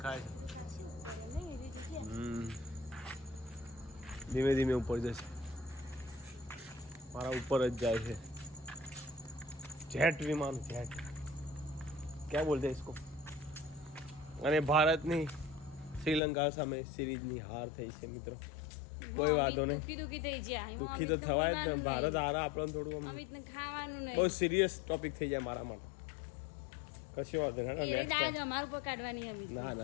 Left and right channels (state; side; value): drops out; right; at 16.2 s